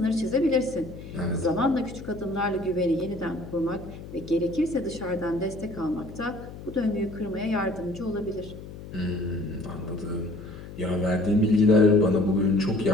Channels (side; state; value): left; noise; hum, 13 dB below the sound